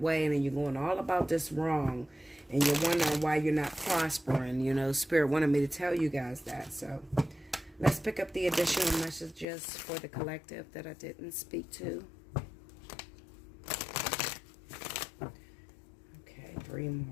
and then you're going all about this wrong. And you're wondering why you're not prospering. You know, Spirit wanted me to tell you guys that. So, let's pick up the additional messages for the collective that I didn't speak to. Okay, 3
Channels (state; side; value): drops out; right; at 9.5 s